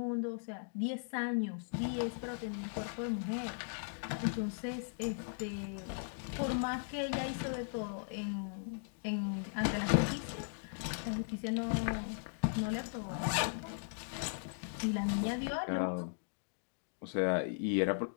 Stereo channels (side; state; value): right; silent; digital silence